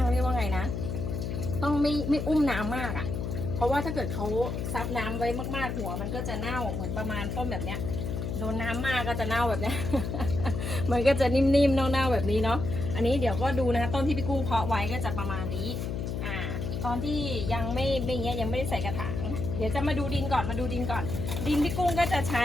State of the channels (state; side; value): noise; left; hum, 3 dB below the sound